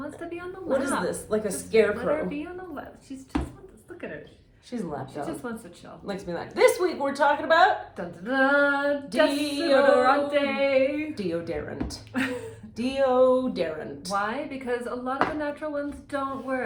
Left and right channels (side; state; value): both; identical; correlation 1.00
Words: to be on the lap. What is this? Like a Just scarecrow. Let her be on the lap. She's just wants. Look at her. She's a lap She dog. just wants to chill. Likes me like. This week we're talking about Dun dun dun. Deodorant. Deodorant. Deodorant. Why? Because a lot of the natural ones don't